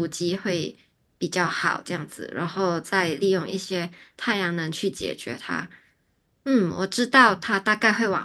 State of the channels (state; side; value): identical; both; correlation 1.00